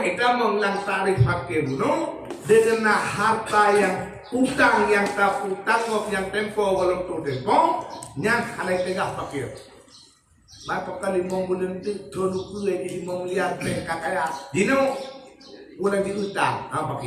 itu mengulang tarikh fakir buno dengan harta yang utang yang tak utang yang tempo walau tempo yang halai tegak fakir. Maka kali mau bulan itu dulu kue di 5 miliar kaya dino bulan di utang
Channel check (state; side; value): identical; both; correlation 1.00